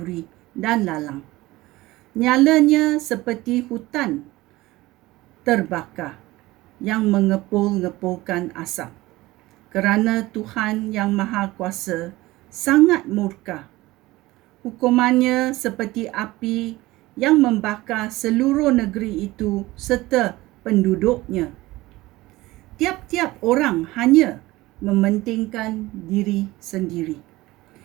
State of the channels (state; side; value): quieter; left; 18.9 dB